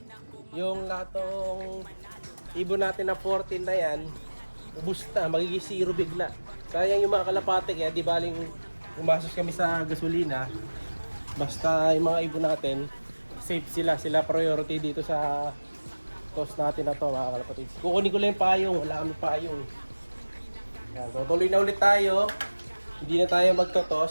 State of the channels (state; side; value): inverted; both; correlation -1.00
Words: Yung latong ibon natin na 14 na yan, ubus na, magiging 0 bigla. Sayang yung mga kalapate, kaya di baling umasos kami sa gasolina. Basta yung mga ibon natin, safe sila. Sila priority dito sa toss natin na to, mga kalapatids. Kukunin ko lang yung payong, wala kami payong. Yan, tutuloy na ulit tayo. Hindi na tayo